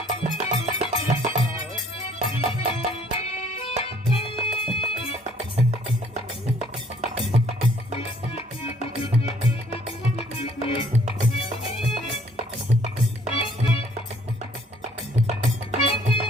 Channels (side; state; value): both; normal; correlation 0.61